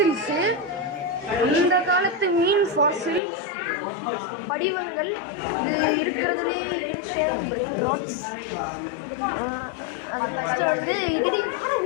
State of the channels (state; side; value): drops out; right; at 3.2 s